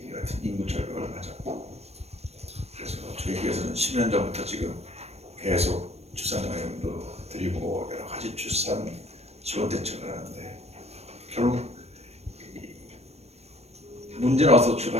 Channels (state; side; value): late; left; 0.31 ms